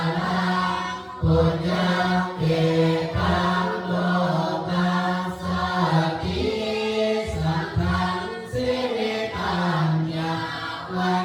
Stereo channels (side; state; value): both; identical; correlation 1.00